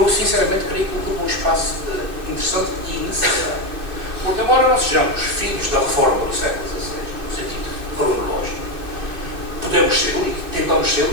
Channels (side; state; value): left; late; 2.6 ms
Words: sinceramente creio que ocupa um espaço interessante e necessário. Porque embora não sejamos filhos da reforma do século XVI, no sentido cronológico, podemos ser, e tentamos ser,